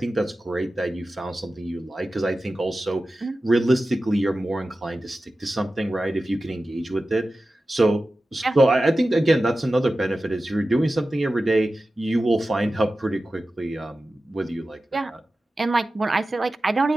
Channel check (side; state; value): both; normal; correlation 0.94